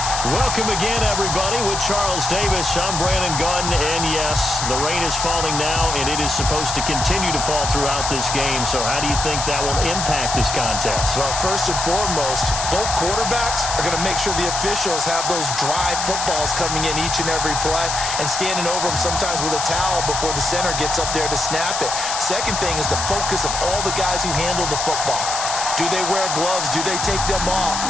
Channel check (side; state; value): left; noise; hiss, 3 dB below the sound